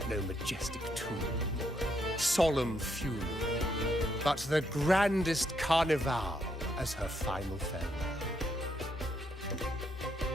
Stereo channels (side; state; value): both; normal; correlation 0.76